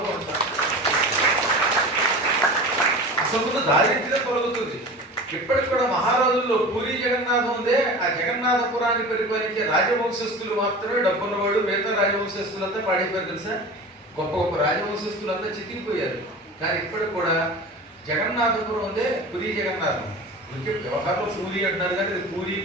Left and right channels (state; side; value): normal; both; correlation 0.34